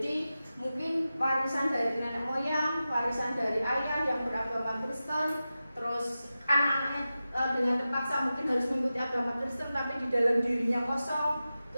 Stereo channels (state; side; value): inverted; both; correlation -0.93